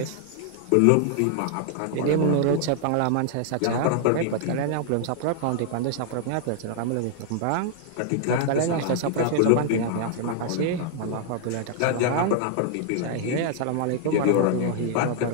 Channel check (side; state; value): both; different; correlation 0.00